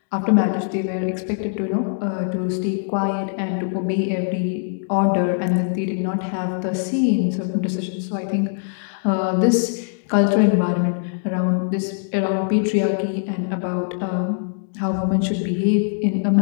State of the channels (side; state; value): right; silent; digital silence